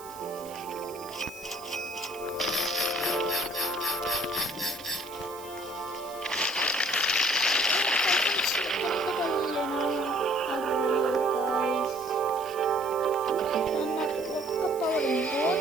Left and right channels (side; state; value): right; noise; hiss, 18 dB below the sound